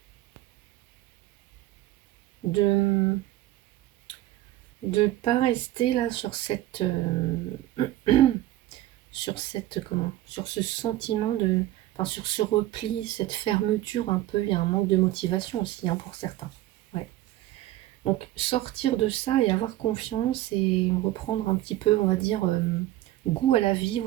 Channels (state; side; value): quieter; left; 15.2 dB